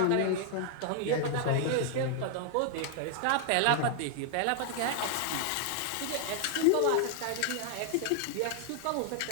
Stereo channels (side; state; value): both; different; correlation 0.00